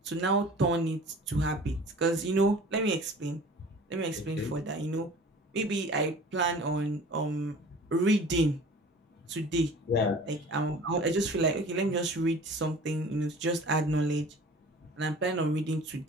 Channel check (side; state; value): both; normal; correlation 0.44